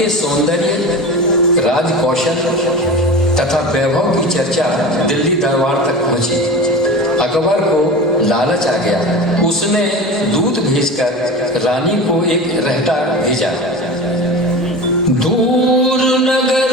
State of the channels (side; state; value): both; normal; correlation 0.31